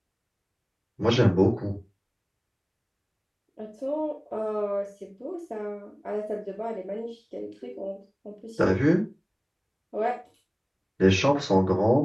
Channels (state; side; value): identical; both; correlation 1.00